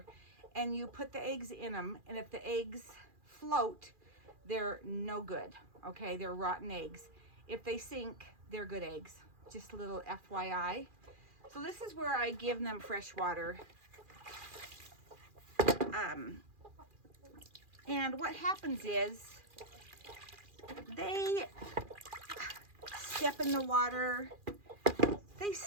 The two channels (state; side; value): late; left; 2.4 ms